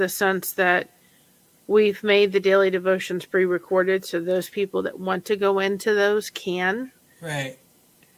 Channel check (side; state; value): both; identical; correlation 1.00